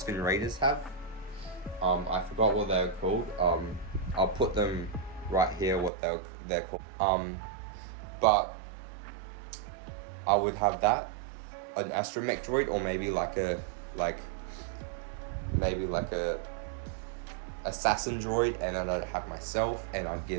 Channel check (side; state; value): left; drops out; at 5.9 s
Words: Raiders have. I forgot what they're called. I'll put them right here what they're called. But I would have that, an astromech droid, or maybe like a assassin droid, and then I'd have myself, and I'd